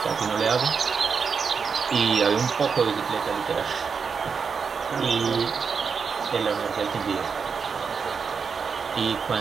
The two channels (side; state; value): left; quieter; 5.8 dB